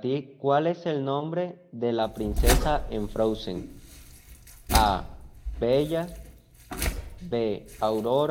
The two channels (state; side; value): identical; both; correlation 1.00